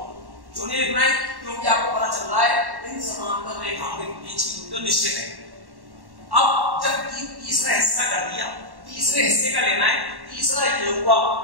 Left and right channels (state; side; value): late; left; 1.1 ms